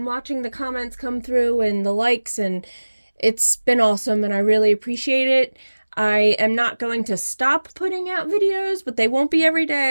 watching the comments come through and the likes, and it's been awesome, and I really appreciate it. I am not going to stop putting out videos, but they won't be every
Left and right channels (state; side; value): inverted; both; correlation -1.00